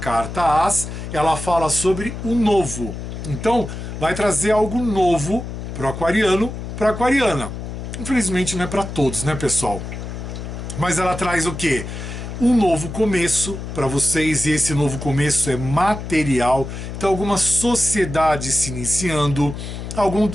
As, ela fala sobre o novo. Então, vai trazer algo novo para o aquariano, para a aquariana. Infelizmente não é para todos, né, pessoal? Mas ela traz o quê? Um novo começo para vocês, e esse novo começo é material. Então, alguma sociedade se iniciando, alguma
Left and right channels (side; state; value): left; noise; hum, 8 dB below the sound